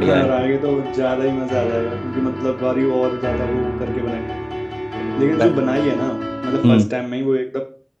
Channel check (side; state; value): both; identical; correlation 1.00